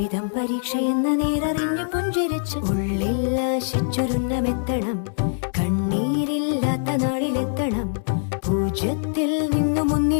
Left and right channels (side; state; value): right; silent; 62 dB below the other